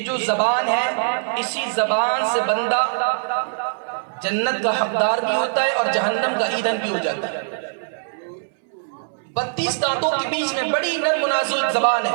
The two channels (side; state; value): left; silent; 64 dB below the other